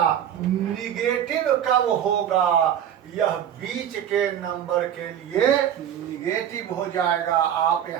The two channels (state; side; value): quieter; left; 9.9 dB